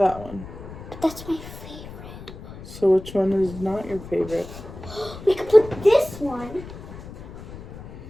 one. But that's my favorite. So which one is not your favorite? We could put this one.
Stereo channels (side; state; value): left; noise; rumble, 13 dB below the sound